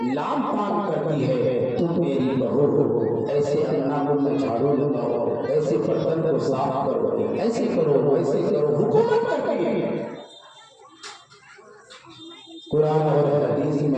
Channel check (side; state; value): both; identical; correlation 1.00